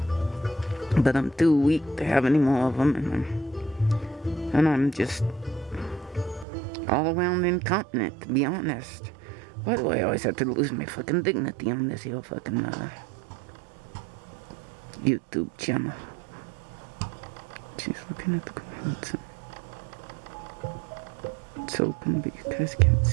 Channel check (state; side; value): drops out; left; at 6.5 s